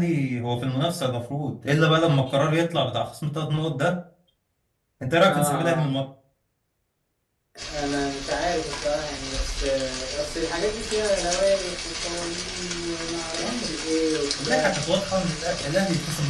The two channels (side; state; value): both; identical; correlation 1.00